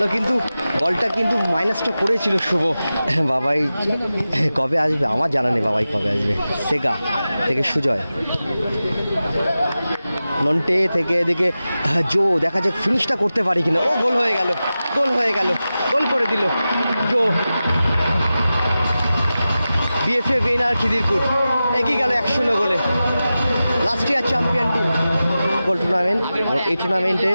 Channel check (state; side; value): inverted; both; correlation -0.94